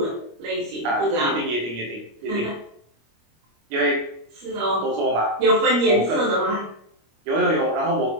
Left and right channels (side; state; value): left; late; 25 ms